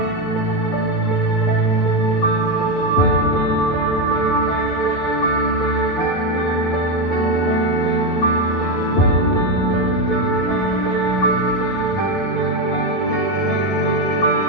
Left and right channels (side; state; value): right; late; 11 ms